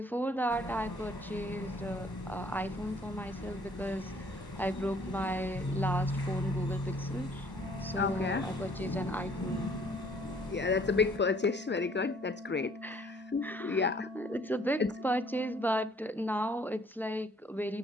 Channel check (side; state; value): both; normal; correlation 0.60